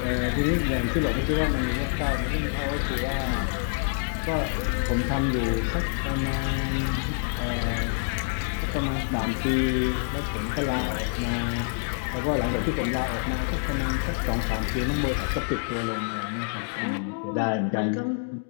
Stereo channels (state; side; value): silent; right; digital silence